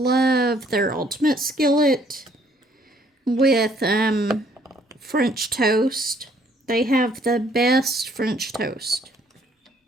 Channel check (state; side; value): normal; both; correlation 0.63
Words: their ultimate skillet with French toast. They have the best French toast.